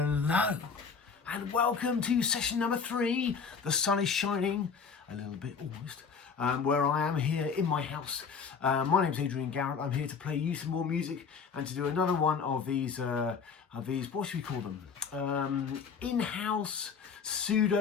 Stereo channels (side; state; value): right; quieter; 5.8 dB